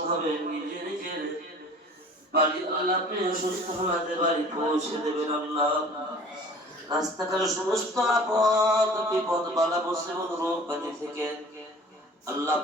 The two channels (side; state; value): both; normal; correlation 0.46